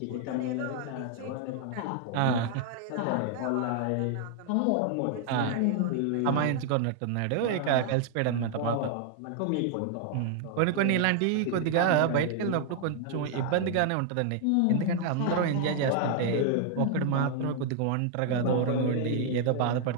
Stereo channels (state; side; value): different; both; correlation 0.00